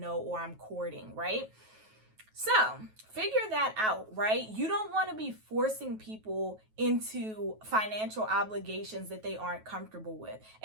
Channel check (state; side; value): late; left; 9.2 ms